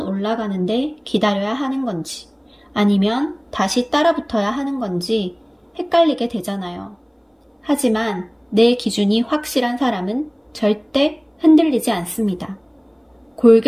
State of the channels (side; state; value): both; identical; correlation 1.00